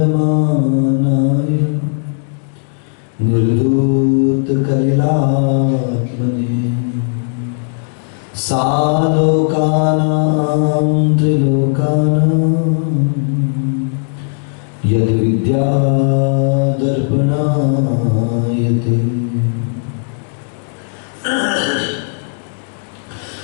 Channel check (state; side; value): silent; right; 66 dB below the other